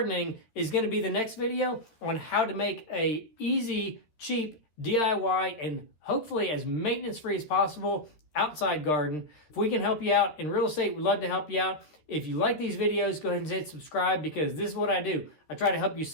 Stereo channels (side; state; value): right; late; 13 ms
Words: is going to be the next video on how to make a easy, cheap DIY and hopefully as maintenance-free as possible outside garden. If we can help you out in real estate, we'd love to help you out. If you like these videos, go ahead and hit subscribe, because this is what I do. I try to help you